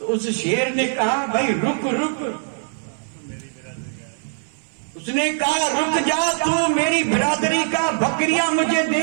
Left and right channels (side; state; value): left; silent; 61 dB below the other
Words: اس شیر نے کہا بھائی رک رک. اس نے کہا رک جا، تو میری برادری کا، بکریاں مجھے